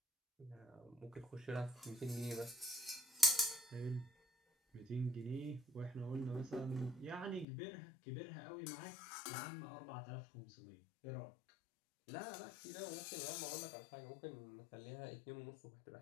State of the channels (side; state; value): right; drops out; at 7.5 s